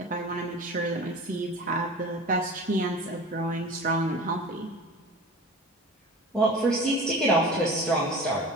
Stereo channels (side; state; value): both; normal; correlation 0.37